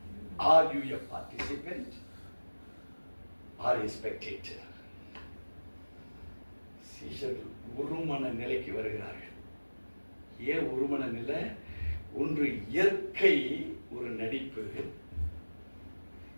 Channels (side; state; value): both; inverted; correlation -1.00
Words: Are you a participant or a spectator? சீஷர்கள் ஒருமன நிலைக்கு வருகிறார்கள். ஏன் ஒருமன நிலை? ஒன்று இயற்கை ஒரு நடிப்பு,